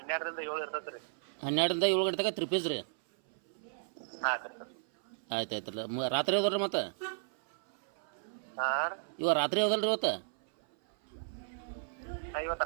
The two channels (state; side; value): silent; left; 55 dB below the other